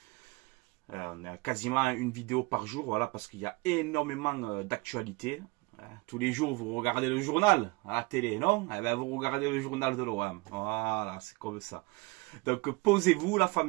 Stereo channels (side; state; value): left; quieter; 24.3 dB